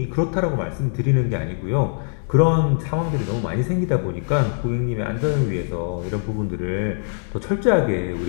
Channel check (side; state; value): right; silent; digital silence